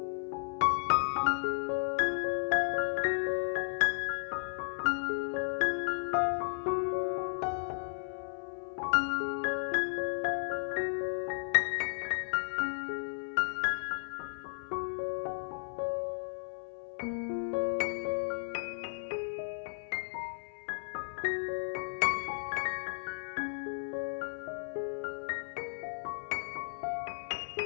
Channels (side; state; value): right; silent; 55 dB below the other